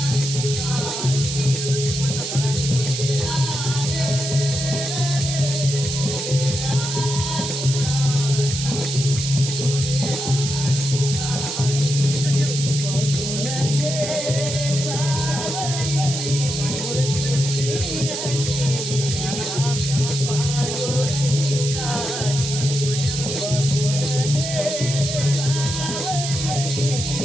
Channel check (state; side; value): noise; right; hiss, 4 dB below the sound